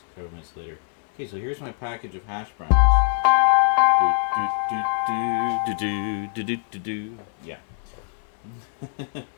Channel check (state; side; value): silent; right; digital silence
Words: Several minutes later. Okay, so here's my package of hash browns. Yeah. Now,